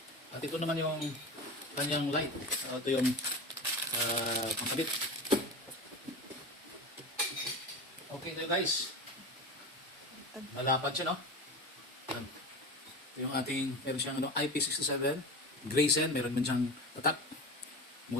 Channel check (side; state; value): both; normal; correlation 0.28